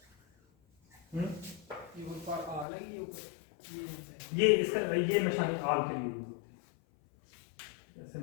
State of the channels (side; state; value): right; drops out; at 2.7 s